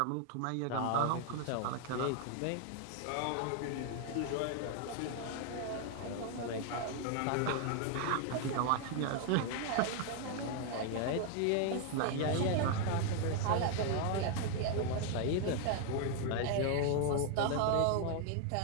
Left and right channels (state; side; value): different; both; correlation 0.00